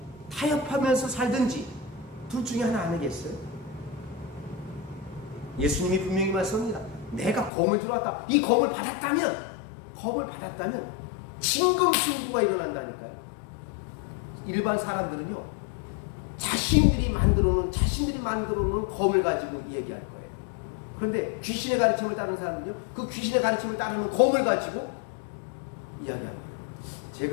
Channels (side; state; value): right; drops out; at 7.5 s